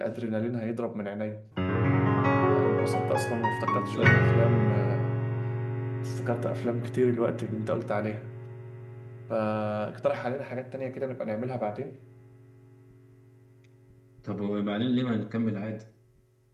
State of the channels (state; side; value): identical; both; correlation 1.00